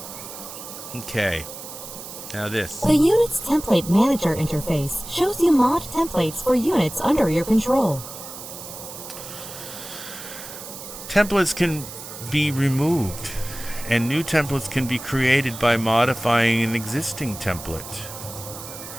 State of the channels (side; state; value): right; noise; hiss, 12 dB below the sound